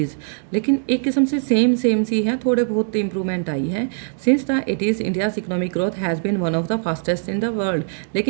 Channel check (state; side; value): silent; left; digital silence